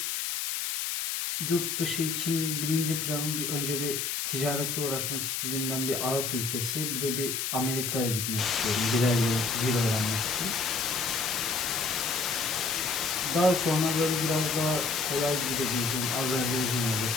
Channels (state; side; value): noise; left; hiss, 1 dB below the sound